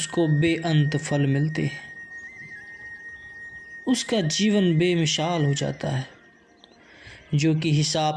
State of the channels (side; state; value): both; identical; correlation 1.00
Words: बेअंत फल मिलते हैं। उसका जीवन बेमिसाल हो जाता है, जो कि